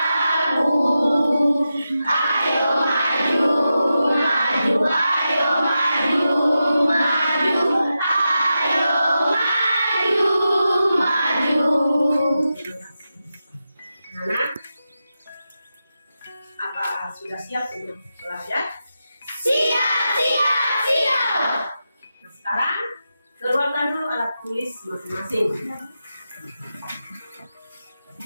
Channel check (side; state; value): both; inverted; correlation -0.90